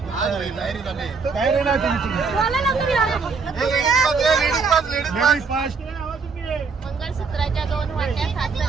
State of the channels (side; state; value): left; quieter; 5.0 dB